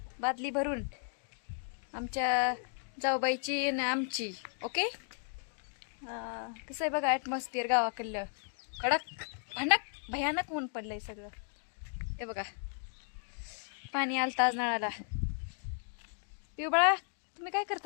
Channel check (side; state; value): right; silent; 54 dB below the other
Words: बादली भरून, आमच्या जाऊबाईची आणि आमची. ओके, कसं आहे बघा ॲटमॉस्फिअर गावाकडलं. कडक भयानक ऊन पडलंय सगळं. हे बघा, पाणी आलतं आज नळाला. पिऊ बाळा, तुम्ही काय